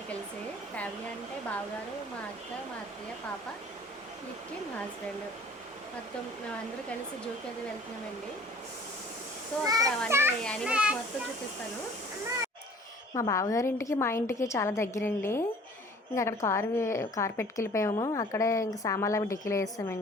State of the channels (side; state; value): both; normal; correlation 0.50